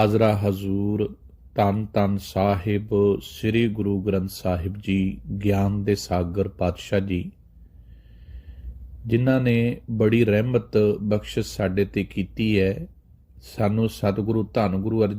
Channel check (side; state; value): both; identical; correlation 1.00